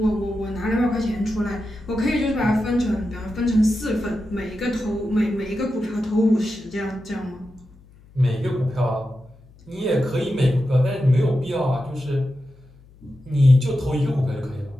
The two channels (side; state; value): left; noise; hum, 25 dB below the sound